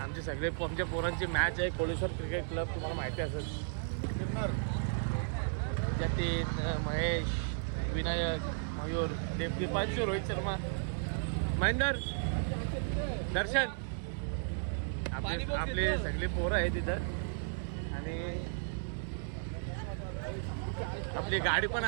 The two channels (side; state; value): left; silent; digital silence